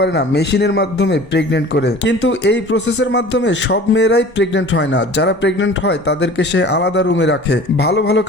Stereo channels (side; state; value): both; normal; correlation 0.43